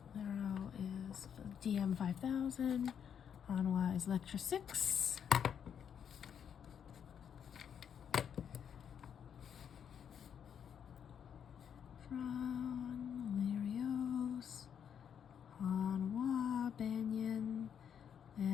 Lero is DM 5000. Hanwha is Lectra 6. Lerios, Hanwha, Banyan,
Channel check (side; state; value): right; quieter; 8.1 dB